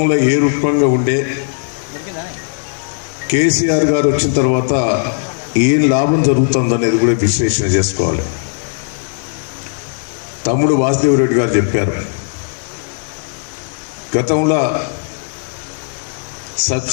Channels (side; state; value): right; silent; digital silence